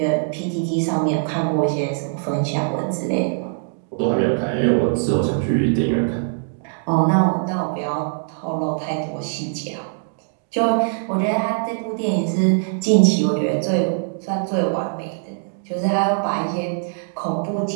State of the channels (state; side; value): silent; left; digital silence